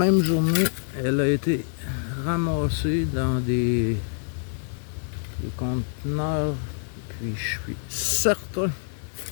journée, elle a été ramassée dans des conteneurs. Puis je suis certain,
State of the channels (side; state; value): right; silent; digital silence